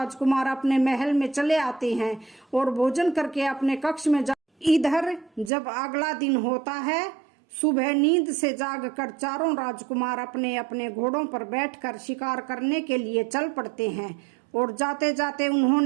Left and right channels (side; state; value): left; drops out; at 5.5 s